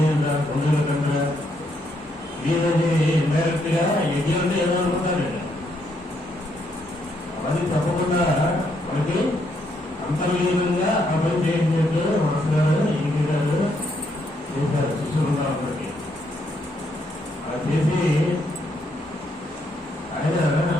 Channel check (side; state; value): both; normal; correlation 0.75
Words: బంధువుల కంటే ఏదైతే ఇండైరెక్ట్ గా యజ్ఞం అంటే ఏదో అనుకుంటారండి. అది తప్పకుండా మనకి అంతర్లీనంగా ఆ పని చేసినట్టు మాస్టర్ ఈజీ గారు చేశారు శిష్యులుగా అందరికి. అలా చేసి ఆయన